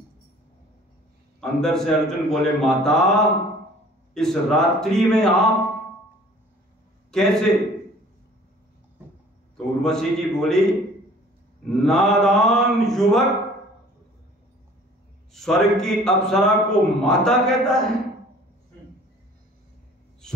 अंदर से अर्जुन बोले माता इस रात्रि में आप कैसे? तो उर्वशी जी बोली नादान युवक स्वर्ग की अप्सरा को माता कहता है?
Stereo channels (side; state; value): both; normal; correlation 0.51